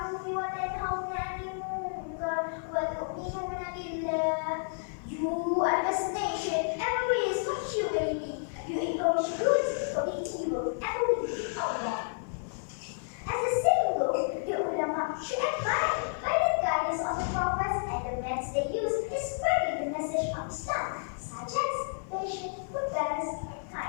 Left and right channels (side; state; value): right; silent; 57 dB below the other